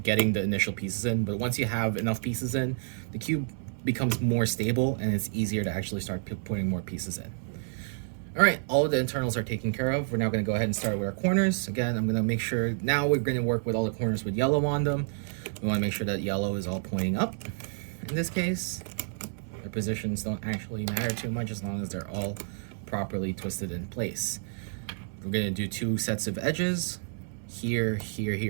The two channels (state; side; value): silent; left; digital silence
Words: getting the initial pieces in, but once you have enough pieces in, the cube becomes more stable and it's easier to actually start putting more pieces in. All right, all of the internals are taken care of. We're now gonna go ahead and start with our corners. Again, I'm gonna make sure, now we're gonna work with all the corners with yellow on them. We wanna make sure that yellow is all pointing up. In this case, their positions don't actually matter too much as long as they're all properly twisted in place. We're gonna do 2 sets of edges, here, here,